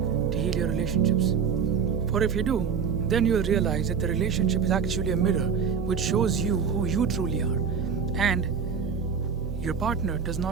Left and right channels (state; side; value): quieter; left; 6.6 dB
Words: to heal your relationships. For if you do, then you'll realize that the relationship is actually a mirror which shows you who you truly are. And your partner does